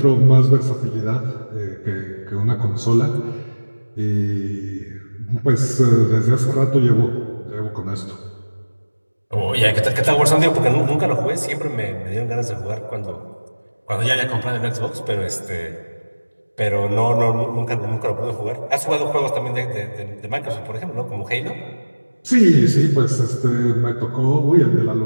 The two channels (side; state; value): both; inverted; correlation -1.00